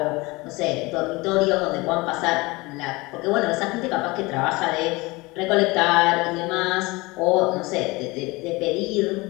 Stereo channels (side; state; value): right; quieter; 23.3 dB